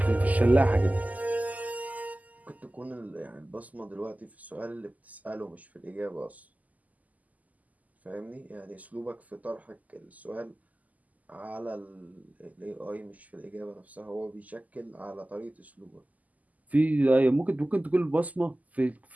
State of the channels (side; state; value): left; late; 0.077 ms